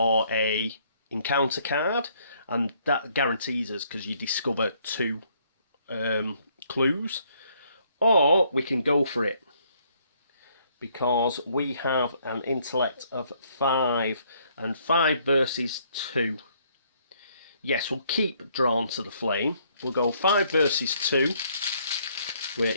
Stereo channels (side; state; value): both; inverted; correlation -0.67